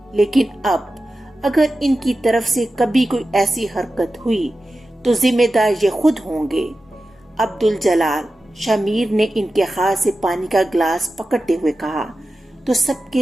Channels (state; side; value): normal; both; correlation 0.93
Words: لیکن اب اگر ان کی طرف سے کبھی کوئی ایسی حرکت ہوئی تو ذمہ دار یہ خود ہوں گے۔ عبدالجلال، شمیر نے ان کے ہاتھ سے پانی کا گلاس پکڑتے ہوئے کہا تو سب